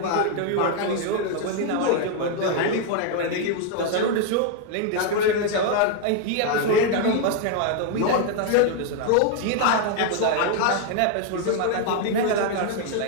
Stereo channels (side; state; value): both; different; correlation 0.00